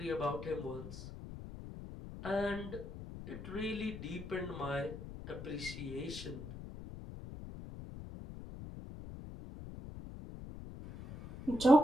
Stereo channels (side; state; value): left; noise; rumble, 11 dB below the sound